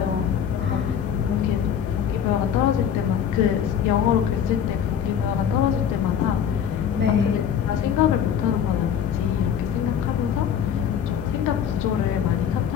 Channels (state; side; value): quieter; right; 8.6 dB